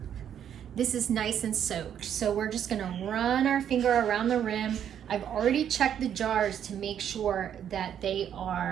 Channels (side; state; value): left; quieter; 9.3 dB